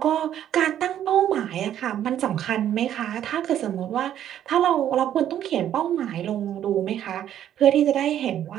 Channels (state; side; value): quieter; left; 10.8 dB